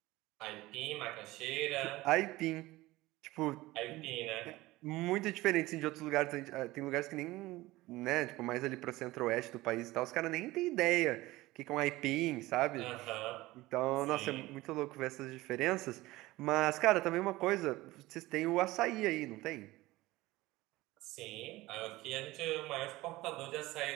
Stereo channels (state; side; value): quieter; left; 18.8 dB